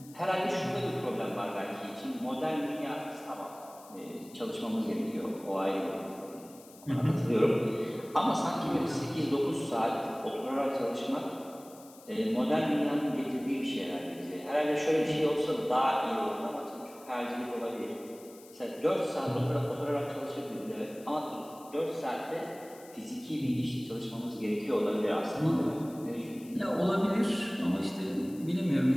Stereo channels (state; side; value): noise; left; hiss, 22 dB below the sound